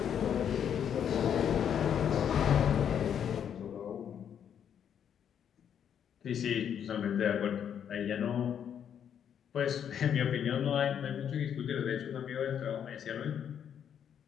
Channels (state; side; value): quieter; right; 8.6 dB